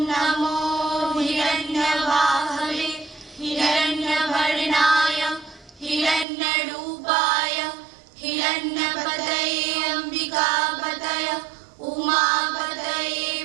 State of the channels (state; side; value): drops out; left; at 6.2 s